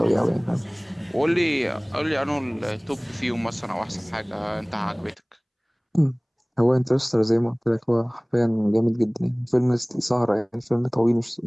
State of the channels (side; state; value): both; identical; correlation 1.00